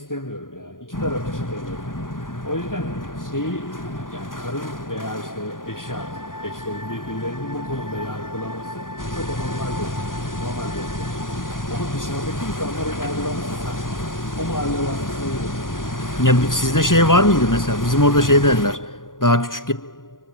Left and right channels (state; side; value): late; right; 0.89 ms